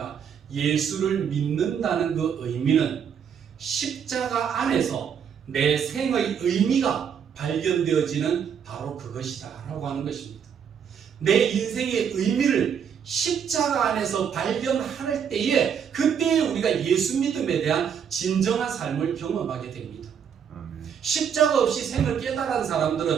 예수를 믿는다는 그 의미는 십자가 안에서 내 생의 의미가 발견되어지는 바로 그것이다 라고 하는 것입니다. 내 인생의 의미를 십자가 안에서 발견할 때에 그때에 우리가 예수 믿음에 대한 진정한 삶을 경험하게 됩니다. 십자가 없이 생을 깨달은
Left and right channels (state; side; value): quieter; left; 7.7 dB